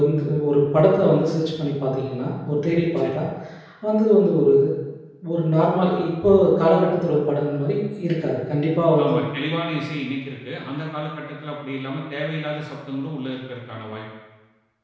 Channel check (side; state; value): both; identical; correlation 1.00